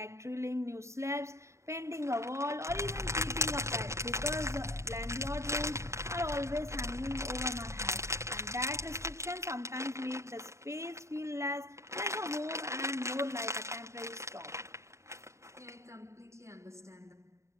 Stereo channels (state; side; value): late; left; 0.14 ms